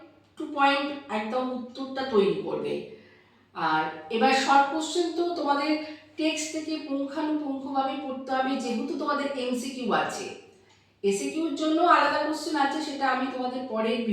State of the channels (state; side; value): identical; both; correlation 1.00